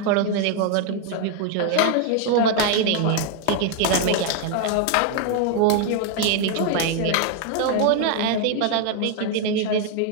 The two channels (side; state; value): both; different; correlation 0.01